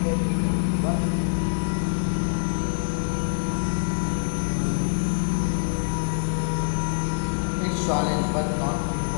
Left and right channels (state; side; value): silent; right; 62 dB below the other